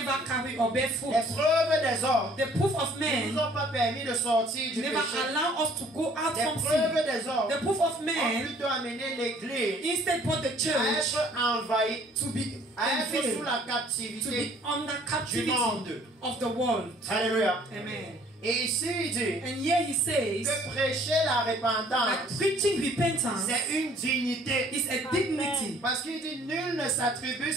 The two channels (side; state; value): both; normal; correlation 0.57